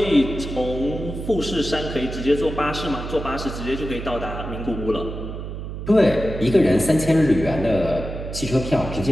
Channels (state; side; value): noise; right; hum, 7 dB below the sound